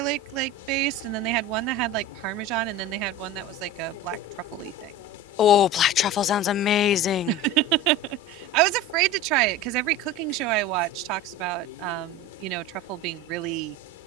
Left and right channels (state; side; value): normal; both; correlation 0.31